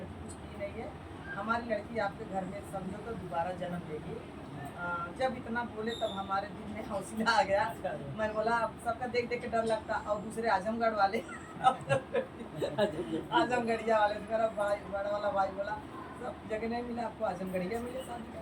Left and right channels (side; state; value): both; identical; correlation 1.00